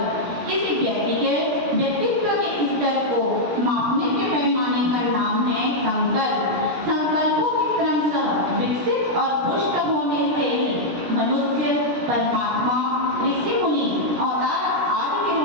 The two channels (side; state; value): left; late; 17 ms